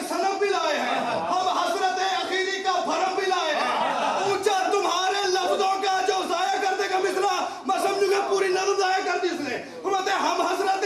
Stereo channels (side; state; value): both; identical; correlation 1.00